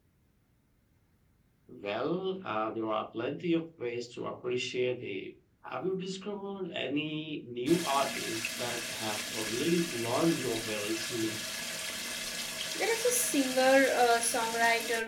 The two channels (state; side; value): identical; both; correlation 1.00